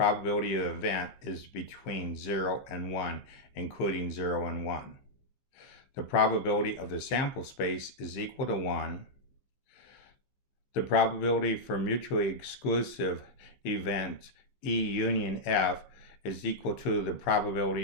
of the event is between 0 and 1, including 0 and 1. The probability of the sample space is equal to 1. The probability for mutually exclusive events E union F is equal to the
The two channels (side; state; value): right; late; 15 ms